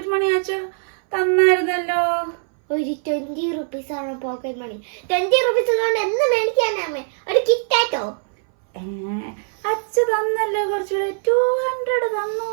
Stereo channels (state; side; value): silent; left; 62 dB below the other